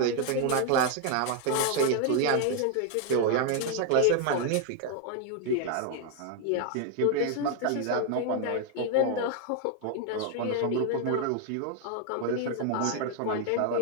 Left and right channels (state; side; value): different; both; correlation 0.00